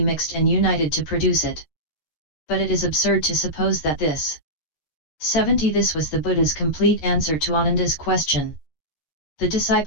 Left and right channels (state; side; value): late; right; 13 ms